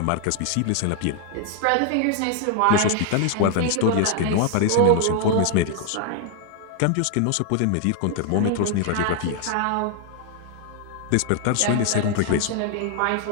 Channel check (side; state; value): both; different; correlation 0.00